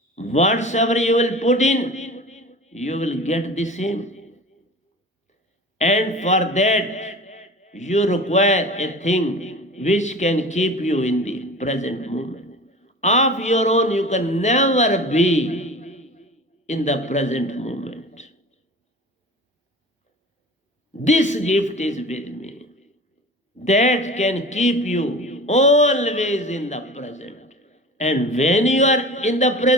Whatsoever you will put in, you will get the same. And for that, you require a thing which can keep you in the present moment. Of your own, you can never be in the present moment. This gift is with me. That can keep you always in the present. And when you are in the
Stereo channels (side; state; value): both; normal; correlation 0.37